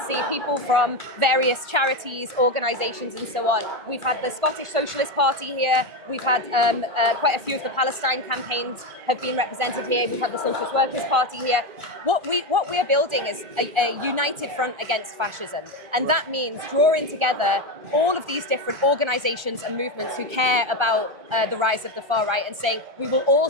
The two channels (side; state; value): left; late; 1.4 ms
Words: see people from various charities, organisations and so on. We've had the Scottish Socialist Party here, we've had quite a few of the Palestine campaigns have been represented here, we've had the Socialist Workers' Party here. What we are building is a united front against fascism, and that means drawing together all of these different organisations and movements who care about the rise of the far right and saying we will all